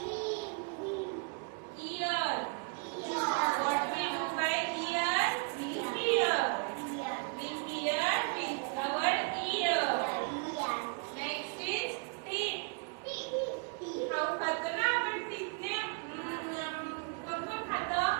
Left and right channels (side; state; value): left; quieter; 36.8 dB